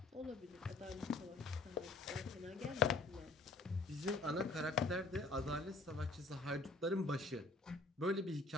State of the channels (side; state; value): right; quieter; 3.3 dB